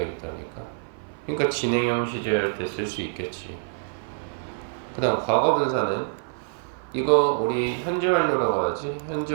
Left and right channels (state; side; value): silent; left; 55 dB below the other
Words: 있다니까. 그러니까 진행형 시제할 때 쓸 수 있겠지. 그 다음 과거 분사는 이거 우리 현재 완료라고 하지.